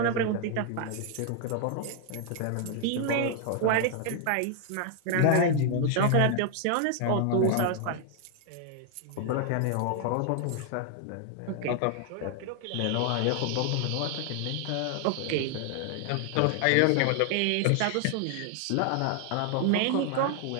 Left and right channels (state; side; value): different; both; correlation 0.00